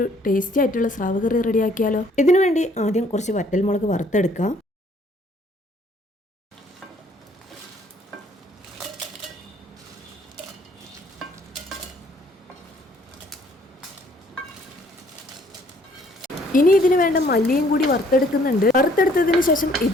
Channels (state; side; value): normal; both; correlation 0.61